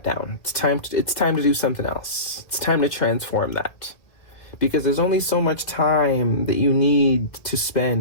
down. It's time to do something else. It's time to transform that, because there's only so much time that you need to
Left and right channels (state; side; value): late; right; 2.1 ms